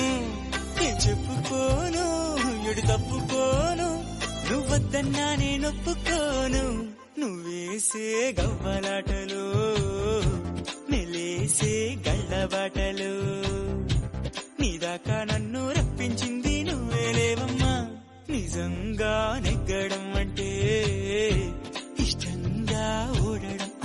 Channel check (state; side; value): identical; both; correlation 1.00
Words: చెప్పుకోను ఎడు తప్పుకోను, నువ్వద్దన్నా నేనొప్పుకోను. నువ్వేసే గవ్వలాటలు నెలేసే గళ్ళబాటలు, నీదాకా నన్ను రప్పించింది నువ్వేలేవమ్మా. నిజంగా